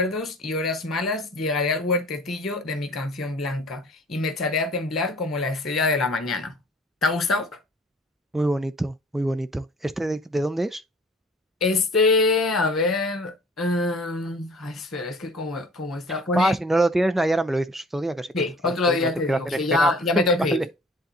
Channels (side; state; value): both; normal; correlation 0.49